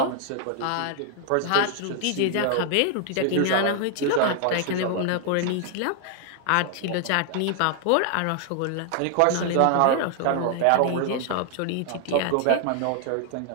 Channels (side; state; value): both; different; correlation 0.00